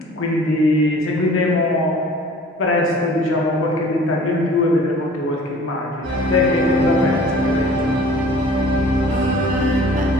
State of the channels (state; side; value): normal; both; correlation 0.48